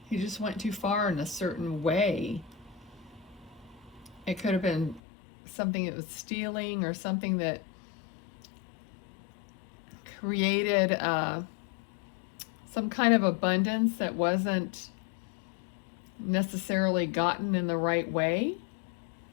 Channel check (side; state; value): right; drops out; at 5.0 s